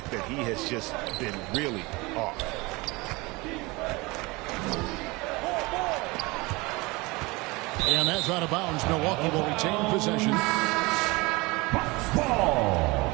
that he has just been really off. And that's out of bounds. Milwaukee will retain possession. Ball.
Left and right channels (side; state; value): left; quieter; 24.1 dB